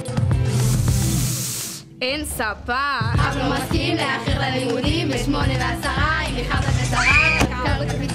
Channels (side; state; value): both; identical; correlation 1.00